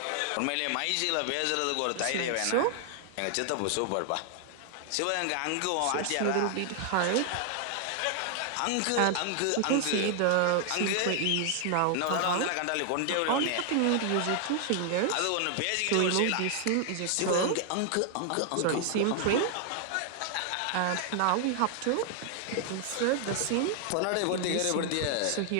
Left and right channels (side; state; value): both; different; correlation 0.00